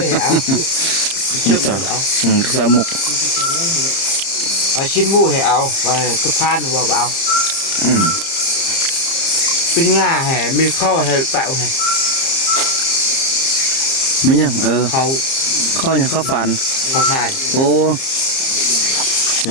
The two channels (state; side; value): late; right; 30 ms